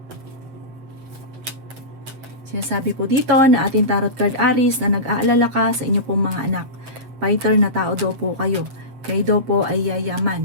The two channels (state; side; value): late; left; 7.9 ms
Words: Sinasabi po dito na ating tarot card Aries na nag-aalala ka sa inyo pong mga anak. Fighter na tao daw po kayo. Kayo daw po ay yayaman.